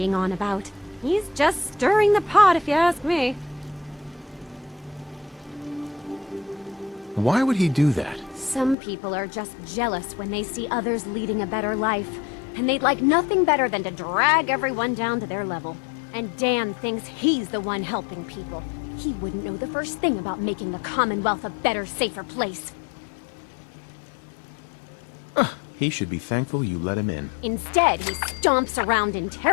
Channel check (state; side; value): drops out; right; at 8.8 s